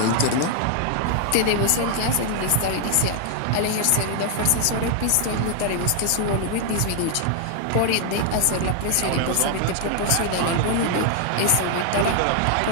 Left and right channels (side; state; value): both; different; correlation 0.00